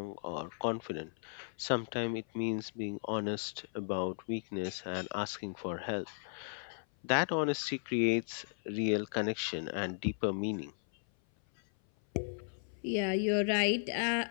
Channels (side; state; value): right; silent; 54 dB below the other